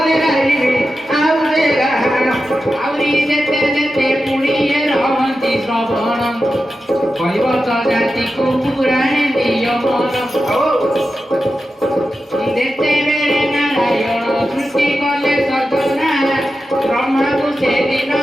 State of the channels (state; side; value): normal; both; correlation 0.91